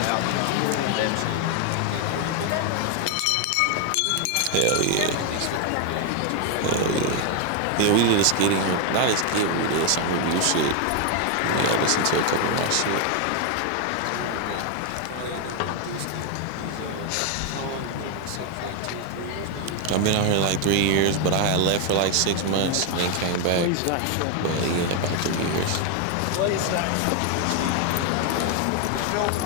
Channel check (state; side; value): different; both; correlation 0.01